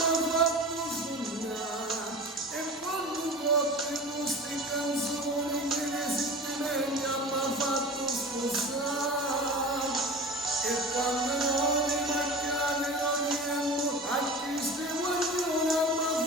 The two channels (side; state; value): both; normal; correlation 0.35